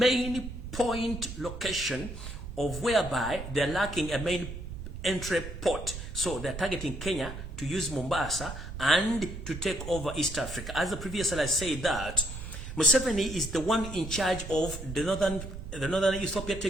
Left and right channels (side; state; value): right; noise; rumble, 9 dB below the sound